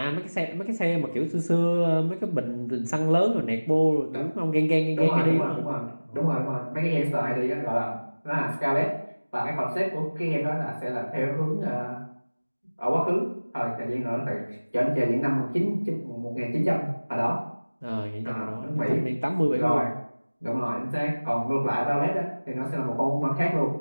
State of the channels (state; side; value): inverted; both; correlation -1.00